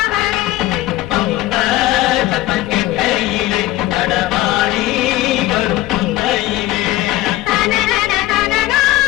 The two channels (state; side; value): quieter; right; 16.1 dB